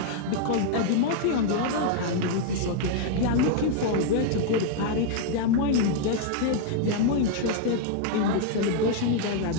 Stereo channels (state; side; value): different; both; correlation -0.01